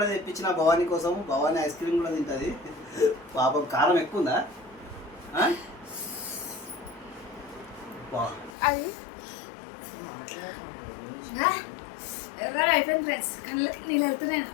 తెప్పించిన భవానీ కోసం. భవానీ ఐస్ క్రీమ్ కూడా తింటది. పాపం కారం ఎక్కువ ఉందా? అది ఎర్రగా అయిపోయింది ఫ్రెండ్స్, కళ్ళకి నీళ్ళు వెళ్తున్నాయి.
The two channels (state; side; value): drops out; right; at 8.6 s